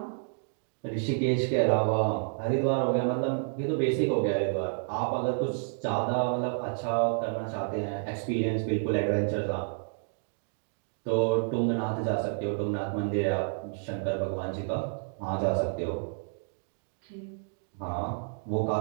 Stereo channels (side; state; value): left; silent; digital silence